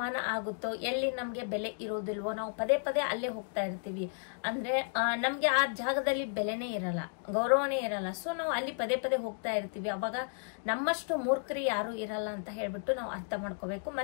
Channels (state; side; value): silent; right; digital silence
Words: ಆಗುತ್ತೋ, ಎಲ್ಲಿ ನಮ್ಗೆ ಬೆಲೆ ಇರೋದಿಲ್ವೋ, ನಾವು ಪದೇ ಪದೇ ಅಲ್ಲೇ ಹೋಗ್ತಾ ಇರ್ತೀವಿ. ಅಂದ್ರೆ ನಮ್ಗೆ ಆ ಜಾಗದಲ್ಲಿ ಬೆಲೆನೇ ಇರಲ್ಲ, ಗೌರವನೇ ಇರಲ್ಲ. ಸೊ ನಾವು ಅಲ್ಲಿ ಪದೇ ಪದೇ ಹೋಗ್ತಾ ಇರ್ತೀವಿ. ಅವಾಗ ನಮ್ಮಷ್ಟು ಮೂರ್ಖರು ಯಾರು ಇರಲ್ಲ ಅಂತ ಹೇಳ್ಬಿಟ್ಟು ನಾವು ಅರ್ಥ ಮಾಡ್ಕೋಬೇಕು.